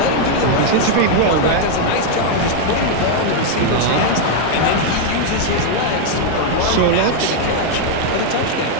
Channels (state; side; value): different; both; correlation 0.00